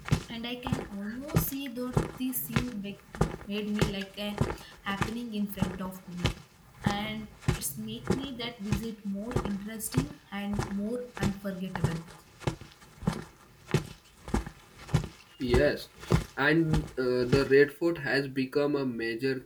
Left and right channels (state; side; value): identical; both; correlation 1.00